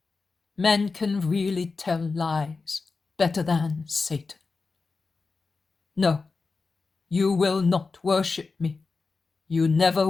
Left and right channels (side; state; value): right; quieter; 4.2 dB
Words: men can really tell lies better than Satan. No, you will not worship me. You never